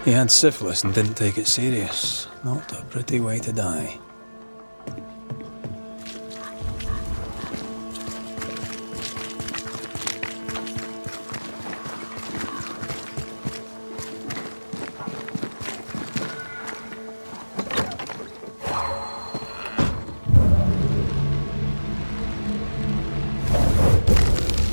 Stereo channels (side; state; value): both; inverted; correlation -1.00